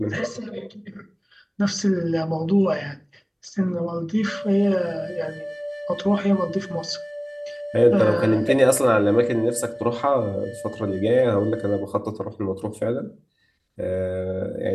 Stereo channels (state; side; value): identical; both; correlation 1.00